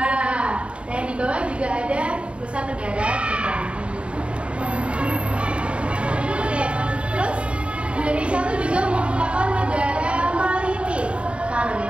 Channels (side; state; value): left; late; 0.059 ms